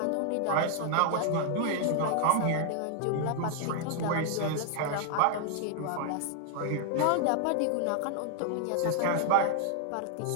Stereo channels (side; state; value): both; different; correlation 0.00